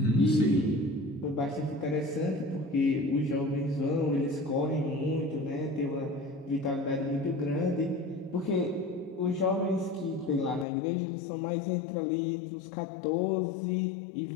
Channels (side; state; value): right; drops out; at 10.7 s